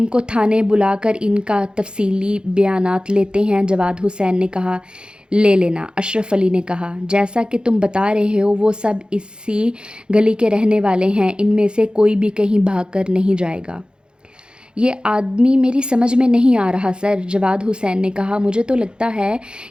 کو تھانے بلا کر ان کا تفصیلی بیانات لیتے ہیں، جواد حسین نے کہا۔ لے لینا، اشرف علی نے کہا۔ جیسا کہ تم بتا رہے ہو وہ سب اسی گلی کے رہنے والے ہیں، ان میں سے کوئی بھی کہیں بھاگ کر نہیں جائے گا۔ یہ آدمی میری سمجھ میں نہیں آ رہا سر، جواد حسین نے کہا۔ مجھے تو لگتا ہے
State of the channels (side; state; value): left; late; 0.050 ms